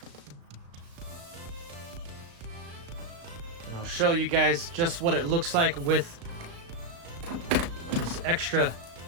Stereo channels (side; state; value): left; late; 35 ms